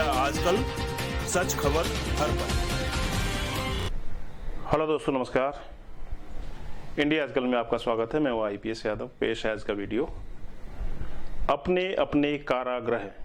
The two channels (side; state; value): both; identical; correlation 1.00